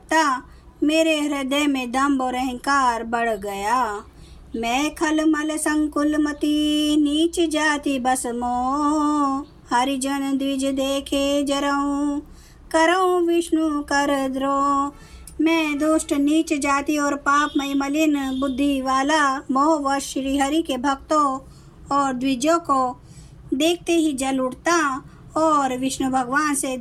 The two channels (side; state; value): both; identical; correlation 1.00